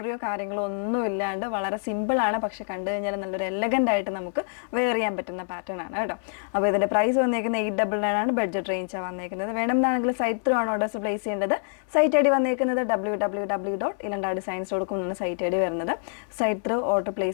കാര്യങ്ങളോ ഒന്നും ഇല്ലാണ്ട് വളരെ സിമ്പിൾ ആണ്, പക്ഷെ കണ്ടു കഴിഞ്ഞാൽ നല്ലൊരു എലഗൻ്റ് ആയിട്ട് നമുക്ക് വെയർ ചെയ്യാൻ പറ്റുന്ന പാറ്റേൺ ആണ് കേട്ടോ. അപ്പോൾ ഇതിൻ്റെ പ്രൈസ് വന്നേക്കുന്നത് 899 ആണ്. ബഡ്ജറ്റ് റേഞ്ചാണ് വന്നേക്കുന്നത്. വേണമെന്നാണെങ്കിൽ സൈറ്റ് ത്രൂ ആണ് ഓർഡേഴ്സ് പ്ലേസ് ചെയ്യേണ്ടത്. സൈറ്റ് ഐ ഡി വന്നേക്കുന്നത് www.ilandardesigns.com എന്നാണ് സൈറ്റ് ഐ ഡി വരുന്നത്. സൈറ്റ് ത്രൂ ഓർഡർ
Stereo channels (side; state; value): right; silent; 61 dB below the other